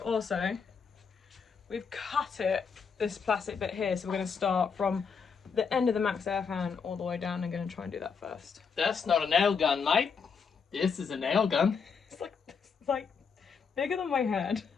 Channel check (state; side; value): quieter; right; 5.9 dB